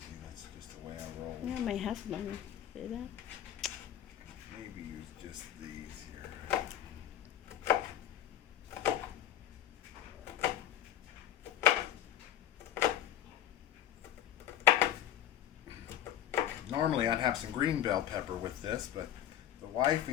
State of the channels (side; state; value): right; quieter; 11.4 dB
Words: That's just the way I roll. Yeah, my husband. See that? Maybe use just these here. Normally I'd have some green bell pepper with this, but the